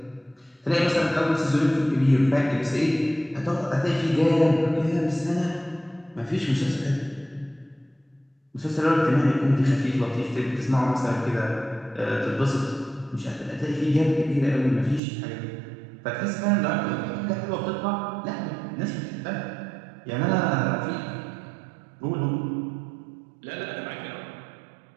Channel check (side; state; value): left; drops out; at 15.0 s